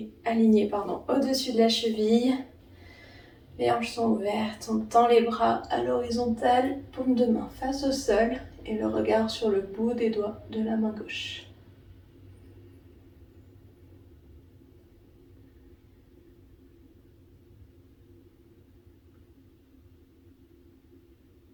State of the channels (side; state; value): both; identical; correlation 1.00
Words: aligné au-dessus de la cheville. Les hanches sont ouvertes, on tend les bras à l'horizontale, paume de main face au sol et le regard sur le bout des doigts de la main gauche.